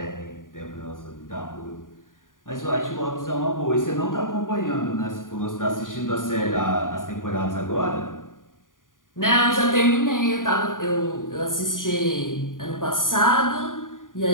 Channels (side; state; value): right; late; 0.89 ms